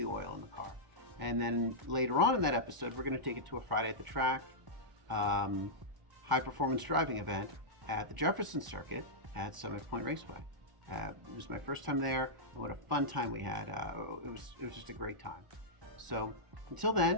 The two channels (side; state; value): left; late; 1.0 ms